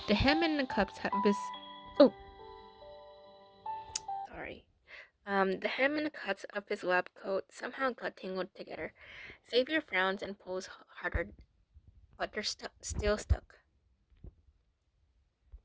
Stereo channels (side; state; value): both; identical; correlation 1.00